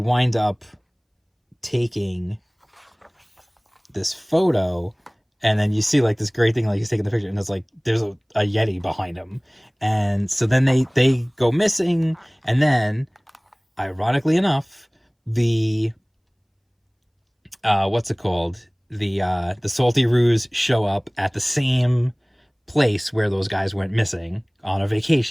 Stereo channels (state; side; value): identical; both; correlation 1.00